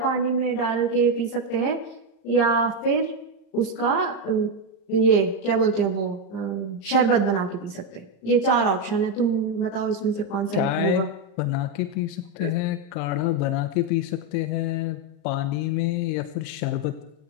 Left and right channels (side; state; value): right; late; 34 ms